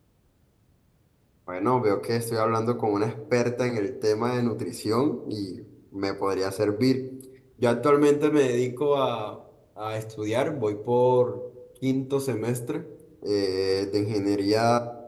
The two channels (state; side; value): identical; both; correlation 1.00